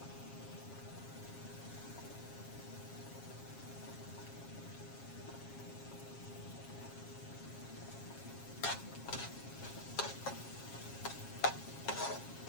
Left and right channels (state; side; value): late; right; 7.4 ms